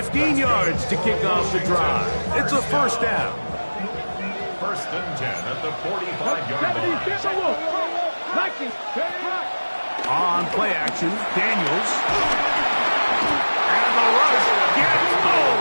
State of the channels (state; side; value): inverted; both; correlation -1.00